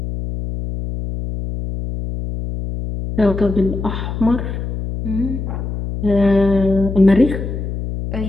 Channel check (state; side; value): noise; left; hum, 5 dB below the sound